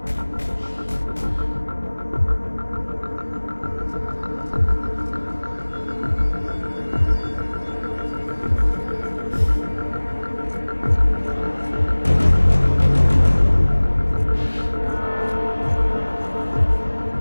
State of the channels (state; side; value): inverted; both; correlation -1.00